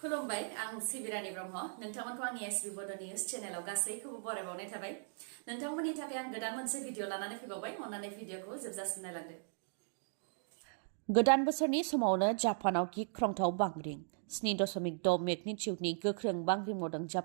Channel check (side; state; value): left; silent; digital silence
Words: आं सिबिरानि ब्रह्म नोंथांमोनखौ आंनि एसबि बड' निउज चेनेलाव गासैखौबो बरायबावनाय थाबाय नोंथांमोननि थाखाय आं गोदान मोनसे भिडिअ लानानै फैबावबाय अन्नानै भिडिअखौ जोबजासिम नायलांदो गोदान बोसोरनि समावनो जापानाव गिख्रंथाव बांग्रिं 7.6 मेगनिट्युडनि गोख्रों बांग्रिं मावदों